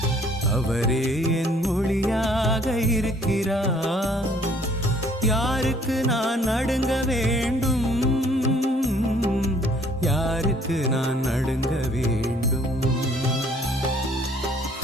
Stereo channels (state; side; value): normal; both; correlation 0.60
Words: அவரே என் ஒளியாக இருக்கிறார், யாருக்கு நான் நடுங்க வேண்டும்? யாருக்கு நான் நடுங்க வேண்டும்?